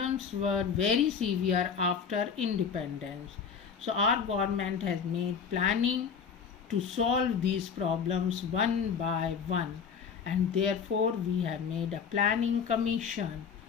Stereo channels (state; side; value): quieter; right; 6.5 dB